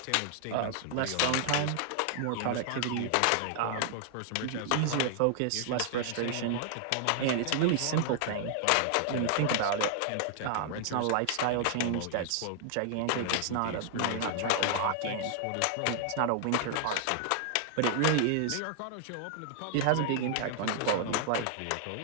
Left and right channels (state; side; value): different; both; correlation 0.00